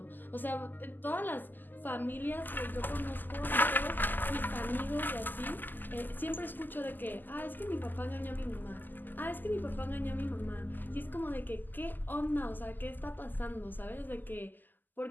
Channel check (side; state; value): right; late; 0.088 ms